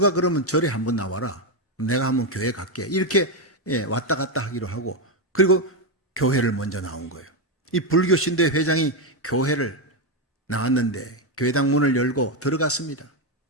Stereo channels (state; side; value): normal; both; correlation 0.06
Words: 그러면 절에 한 번 나와라. 내가 한번 교회 갈게. 이렇게 왔다 갔다 하기로 하고, 그리고 교회를 먼저 나온 거예요. 이 불교 신도회 회장이 교회를 나왔는데 교회당 문을 열고 들어갔습니다.